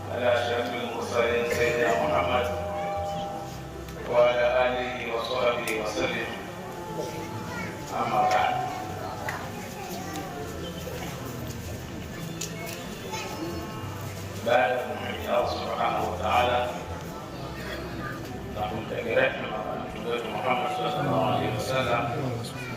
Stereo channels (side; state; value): both; identical; correlation 1.00